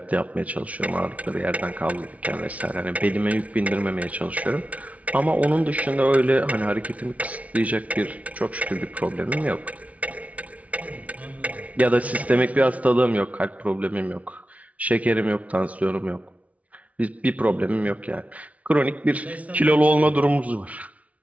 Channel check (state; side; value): late; left; 0.067 ms